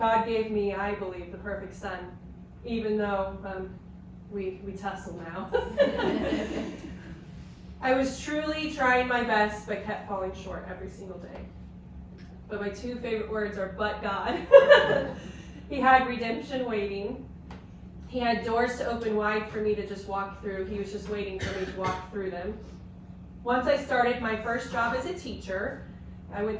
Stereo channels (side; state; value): both; identical; correlation 1.00